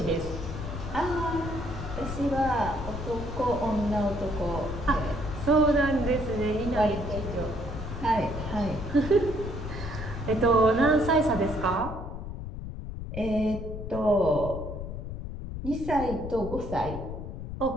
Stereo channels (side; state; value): left; noise; rumble, 7 dB below the sound